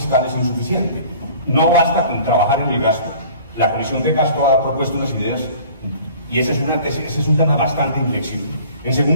es insuficiente. No basta con trabajar en el gasto. La Comisión de Gasto ha propuesto unas ideas, y ese es un tema bastante inflexible. En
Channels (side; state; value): both; inverted; correlation -0.47